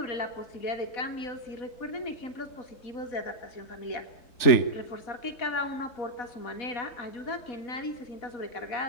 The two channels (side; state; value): right; late; 3.4 ms